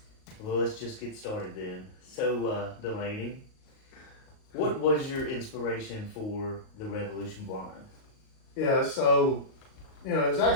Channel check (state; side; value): late; right; 38 ms